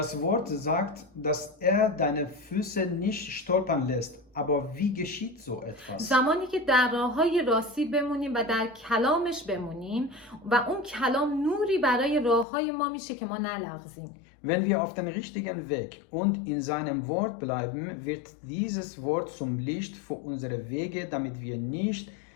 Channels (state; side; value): drops out; right; at 12.5 s